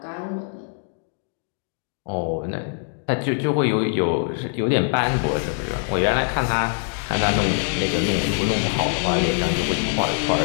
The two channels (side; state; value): right; silent; digital silence